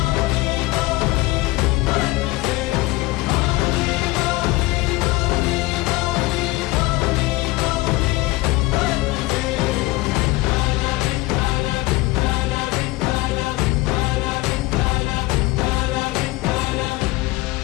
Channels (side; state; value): right; quieter; 20.2 dB